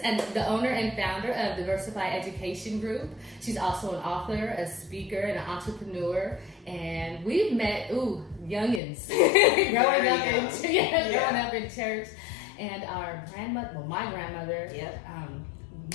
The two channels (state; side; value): drops out; right; at 8.8 s